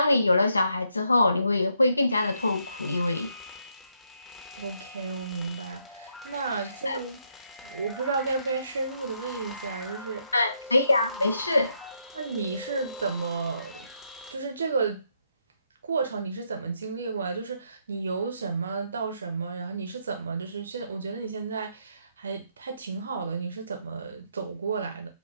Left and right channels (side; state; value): both; inverted; correlation -0.76